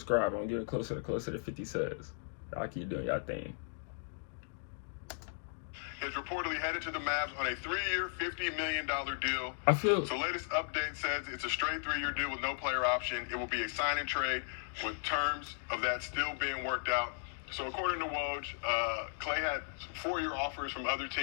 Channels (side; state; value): right; silent; digital silence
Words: I'm getting closer to 50 subs. Y'all keep doing y'all thing. Is reportedly headed to the Mavs on a 3-year, $50 million deal. So latest update says it's a straight 3-year deal with no player option. It will be a sign and trade with terms of that still being worked out. So according to Woj, Klay had some 4-year offers from other